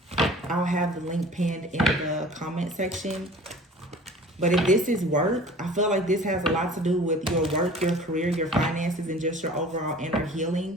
I'll have the link pinned in the comment section. But if this is work, I feel like this has a lot to do with your work, your career, your finances, and just your overall inner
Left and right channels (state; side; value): normal; both; correlation 0.45